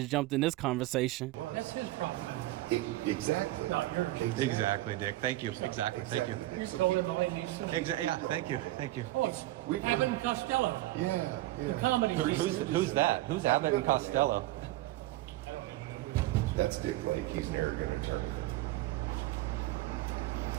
jumped in this conversation. That's his problem. Exactly. Not yours. exactly, Dick. Thank you. Exactly. Thank you. Exactly. You're So calling keep- all he needs to do. Yeah. Thank you. Thank you. Oh, it's We've Abbott heard- and Costello. Yeah. The comedy. Who's that? Who's Abbott and Costello? That's Dick Lake. He's an arrogant attorney.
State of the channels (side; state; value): left; quieter; 17.1 dB